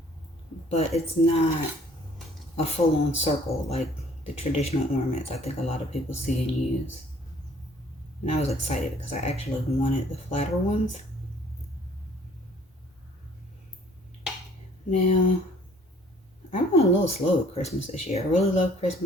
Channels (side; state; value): both; normal; correlation 0.57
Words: But it's not a full-on circle like the traditional ornaments I think a lot of people see and use. And I was excited because I actually wanted the flatter ones. Now, I went a little slow with Christmas this year. I really love